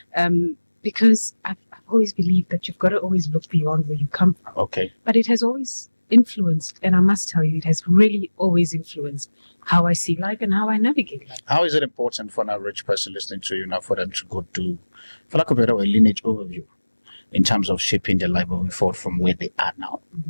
Because I've always believed that you've got to always look beyond where you come from. Okay. But it has always influenced, and I must tell you, it has really always influenced how I see life and how I navigate life. How is it important for an average person listening to you now for them to go to, for lack of a better word, lineage overview in terms of shaping their life moving forward from where they are now?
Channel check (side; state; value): both; inverted; correlation -1.00